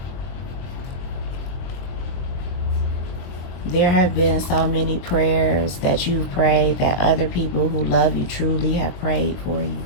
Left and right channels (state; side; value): late; right; 22 ms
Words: There have been so many prayers that you've prayed that other people who love you truly have prayed for you.